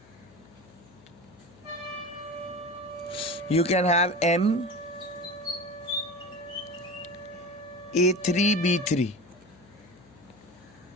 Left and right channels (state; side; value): noise; left; hum, 25 dB below the sound